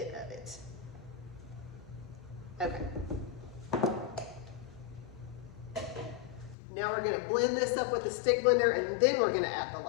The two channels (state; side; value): drops out; right; at 6.6 s